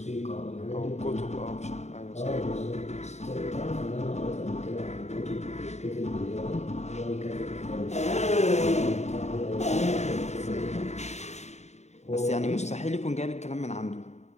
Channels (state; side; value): late; right; 0.32 ms